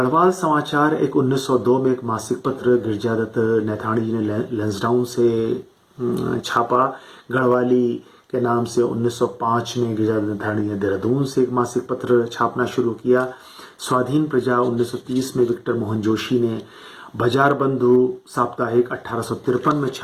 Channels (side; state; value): both; identical; correlation 1.00